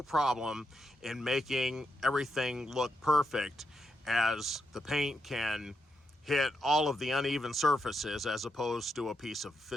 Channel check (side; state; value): both; normal; correlation 0.83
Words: problem in making everything look perfect, as the paint can hit all of the uneven surfaces as opposed to a piece of